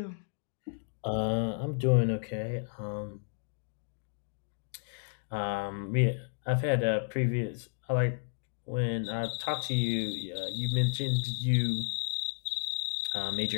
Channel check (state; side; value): silent; right; digital silence